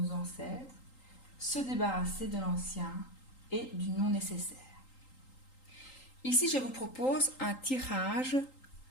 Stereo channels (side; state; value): right; late; 3.8 ms